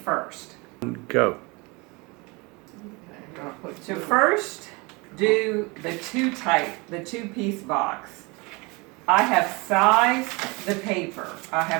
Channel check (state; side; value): quieter; left; 27.0 dB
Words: Go. So first, do the 2-type, the 2-piece box. I have sized the paper. I